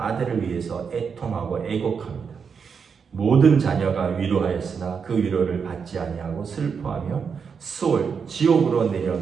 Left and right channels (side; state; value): left; quieter; 6.2 dB